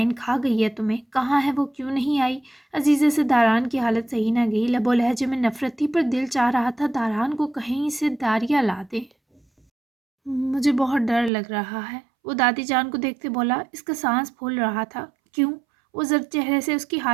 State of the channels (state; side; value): drops out; left; at 11.3 s